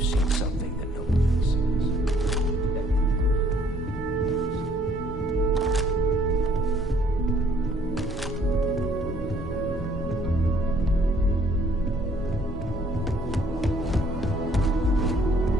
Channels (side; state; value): both; normal; correlation 0.62